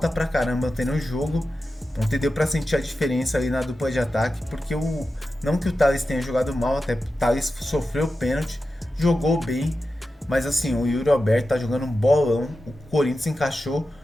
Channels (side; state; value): both; normal; correlation 0.92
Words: pra caramba ontem no jogo. Ontem deu pra sentir a diferença ali na dupla de ataque, porque não que o Thales tenha jogado mal, até o Thales sofreu pênalti, jogou bem, mas assim, o Yuri Alberto tá jogando um bolão. O Corinthians encaixou